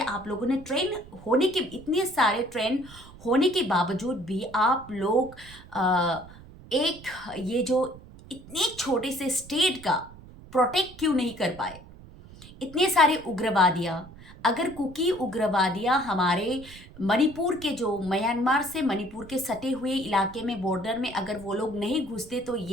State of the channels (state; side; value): noise; right; rumble, 19 dB below the sound